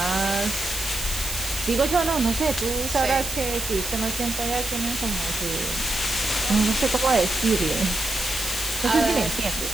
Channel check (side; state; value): right; noise; hiss, 6 dB below the sound